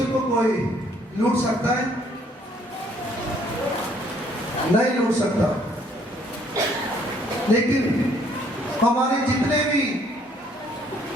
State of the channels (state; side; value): normal; both; correlation 0.63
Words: को कोई लूट सकता है? नहीं लूट सकता। लेकिन हमारे जितने भी